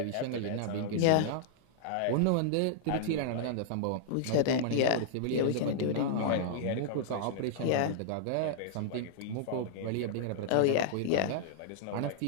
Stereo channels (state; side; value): different; both; correlation -0.01